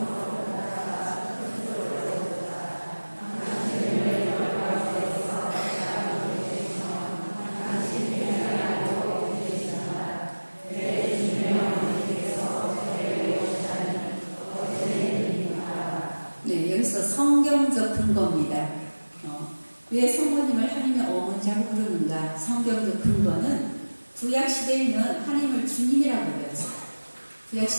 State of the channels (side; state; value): both; inverted; correlation -1.00